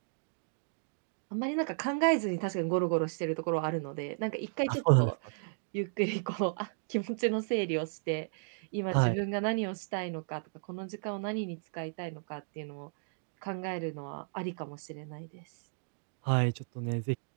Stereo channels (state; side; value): silent; left; digital silence